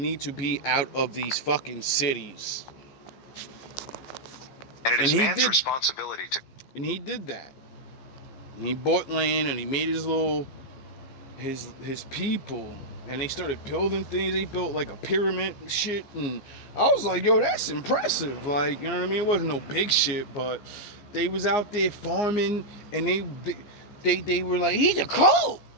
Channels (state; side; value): late; right; 15 ms